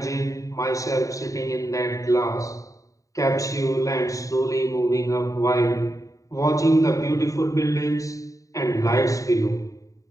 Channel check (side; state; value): right; late; 0.16 ms